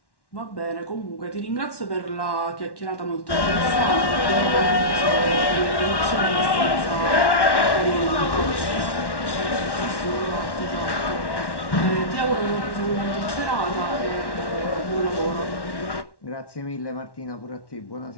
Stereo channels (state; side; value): late; right; 1.1 ms